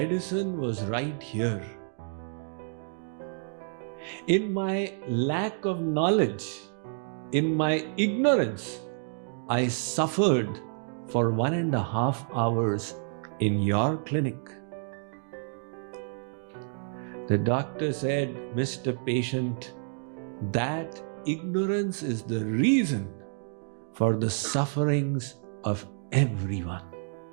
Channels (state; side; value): silent; left; 58 dB below the other